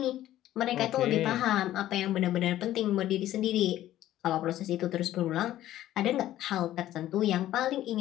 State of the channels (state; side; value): quieter; right; 13.5 dB